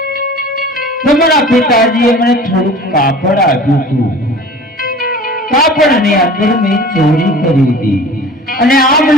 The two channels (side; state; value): both; normal; correlation 0.42